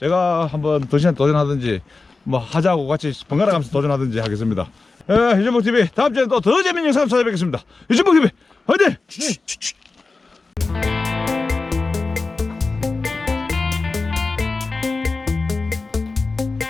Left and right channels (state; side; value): quieter; right; 3.8 dB